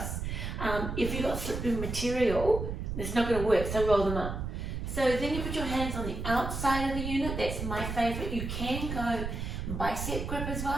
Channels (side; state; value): right; noise; rumble, 4 dB below the sound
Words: If you've got slippery material, it's not going to work, so roll them up. So then you put your hands on the outside of the unit. That's my favourite. You can go bicep grip as